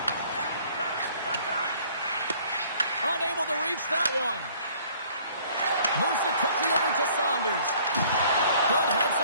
Unable to reach that one. Moves it quickly over to Saunders. Good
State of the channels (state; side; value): inverted; both; correlation -0.56